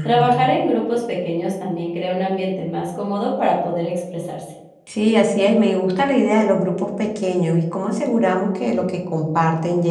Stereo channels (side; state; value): both; identical; correlation 1.00